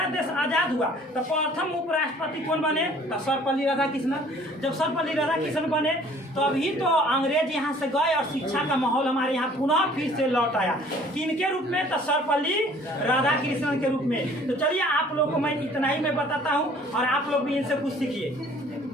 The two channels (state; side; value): normal; both; correlation 0.54